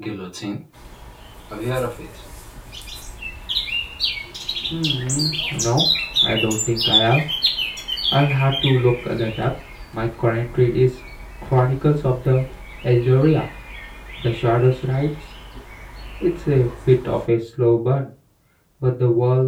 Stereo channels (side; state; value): both; identical; correlation 1.00